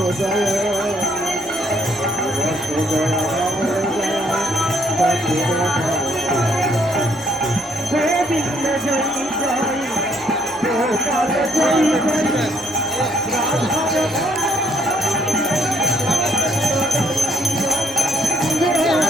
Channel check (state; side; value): normal; both; correlation 0.68